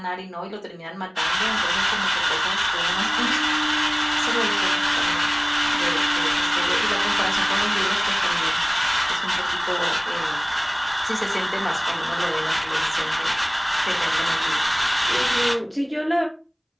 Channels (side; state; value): both; identical; correlation 1.00